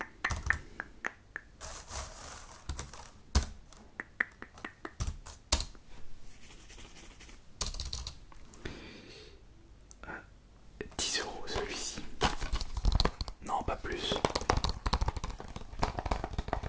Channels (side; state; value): both; identical; correlation 1.00